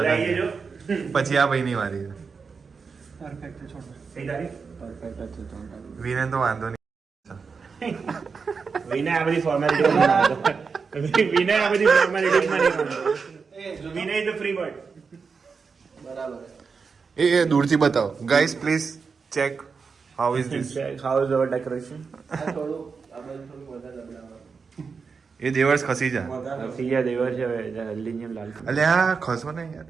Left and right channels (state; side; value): quieter; left; 5.3 dB